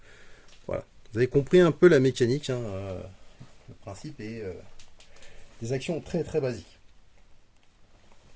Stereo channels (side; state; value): both; identical; correlation 1.00